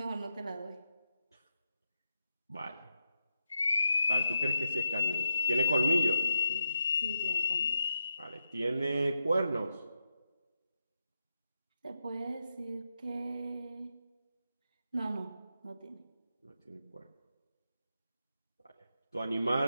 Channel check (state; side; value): inverted; both; correlation -0.86